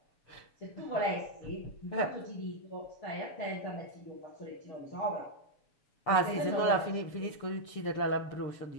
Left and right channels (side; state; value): right; late; 6.7 ms